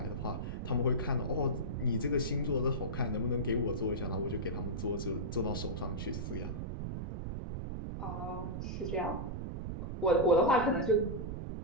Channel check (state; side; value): noise; right; rumble, 4 dB below the sound